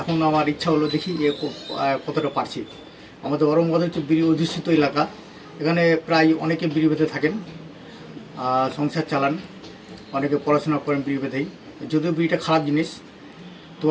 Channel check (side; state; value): both; identical; correlation 1.00